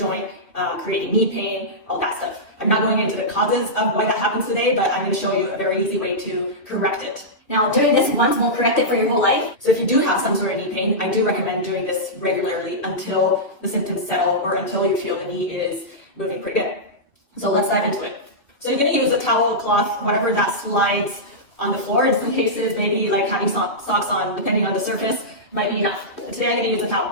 creating knee pain, all that stuff. I'm not going into the causes of why that happens today, but I'm going to show you a very easy way to correct it. Now, doing this once won't correct it for your whole life. So if you do have some sort of knee pain, I do recommend doing this regularly until the symptoms settle or until you feel the knee is moving pretty good. So let's dive into it. So you're going to use a towel, cloth, whatever that slides on the floor. In some cases, maybe like having socks on, depending on the surface, might be enough. But today I'm going to use a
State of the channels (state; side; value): late; right; 2.8 ms